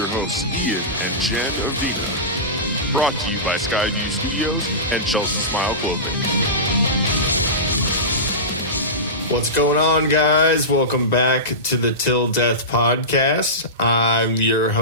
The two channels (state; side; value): normal; both; correlation -0.19